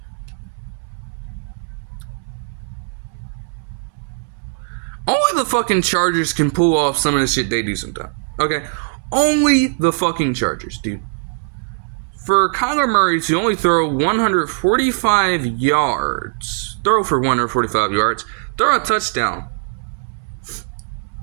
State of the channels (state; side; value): silent; left; 66 dB below the other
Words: the fucking Chargers can pull off some of the shit they do sometimes. Okay? Only the fucking Chargers, dude. For Kyler Murray to only throw 145 yards, throw a touchdown,